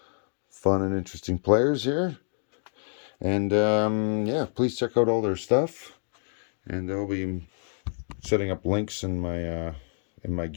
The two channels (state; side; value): silent; right; digital silence